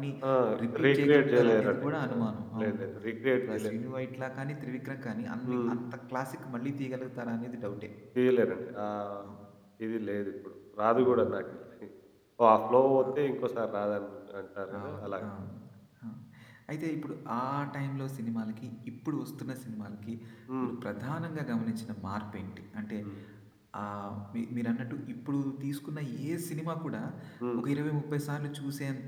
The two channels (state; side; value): identical; both; correlation 1.00